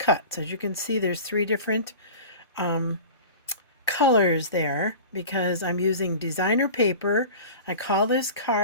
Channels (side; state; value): both; inverted; correlation -0.37